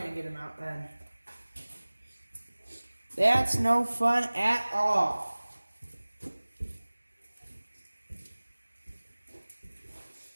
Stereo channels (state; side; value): inverted; both; correlation -1.00